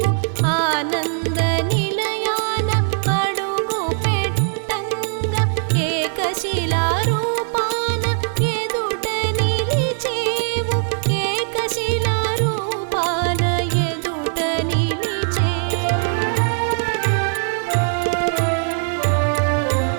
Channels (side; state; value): left; silent; digital silence